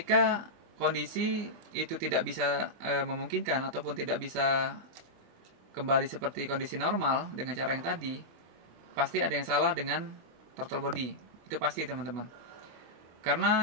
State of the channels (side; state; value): left; late; 25 ms